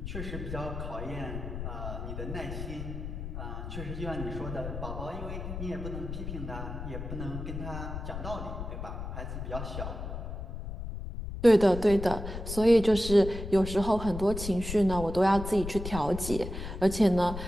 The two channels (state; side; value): noise; left; rumble, 7 dB below the sound